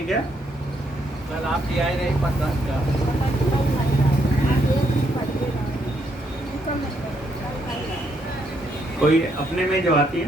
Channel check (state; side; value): normal; both; correlation 0.75